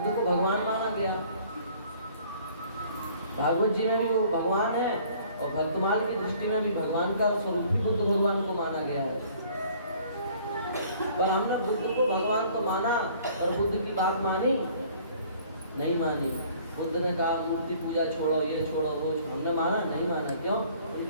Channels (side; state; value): both; inverted; correlation -0.55